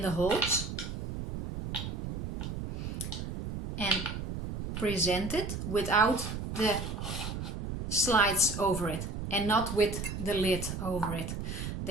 holes and present it without the slides over it and not with the lid over it.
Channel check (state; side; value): noise; right; rumble, 5 dB below the sound